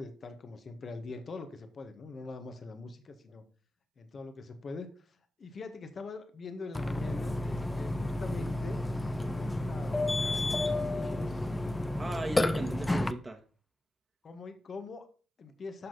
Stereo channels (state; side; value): normal; both; correlation 0.94